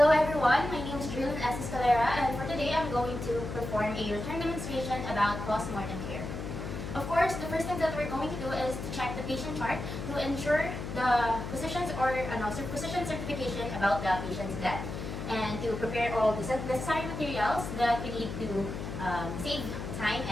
everyone, my name is Julian S. Escalera, and for today I'm going to perform a return demonstration about post-mortem care. Of course, the first thing that we're going to do is to check the patient chart to ensure the physician's physician certification about the patient's death, and to prepare all the necessary materials that we need to save time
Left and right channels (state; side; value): noise; left; hum, 6 dB below the sound